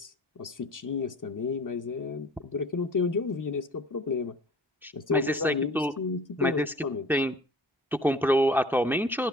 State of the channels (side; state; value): both; normal; correlation 0.47